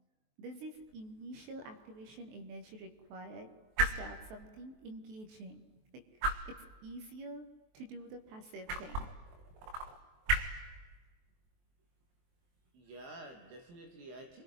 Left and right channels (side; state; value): left; late; 23 ms